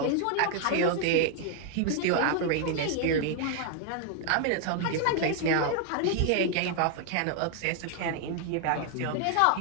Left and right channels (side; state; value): both; different; correlation 0.00